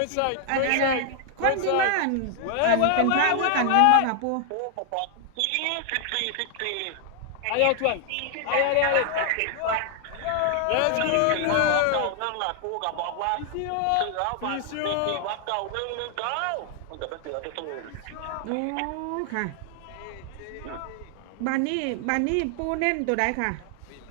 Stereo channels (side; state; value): both; different; correlation 0.00